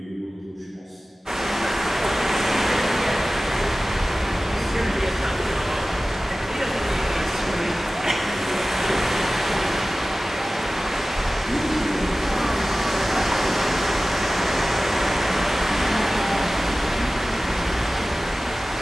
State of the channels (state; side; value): normal; both; correlation 0.97